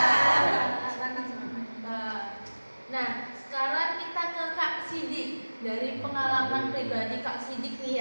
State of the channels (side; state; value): both; inverted; correlation -1.00